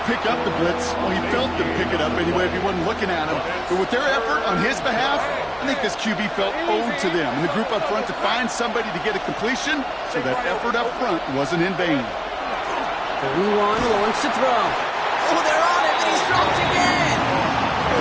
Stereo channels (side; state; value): both; identical; correlation 1.00